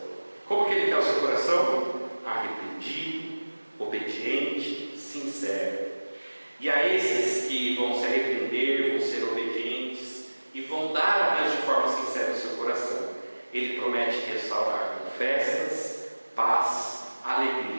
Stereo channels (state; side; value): inverted; both; correlation -1.00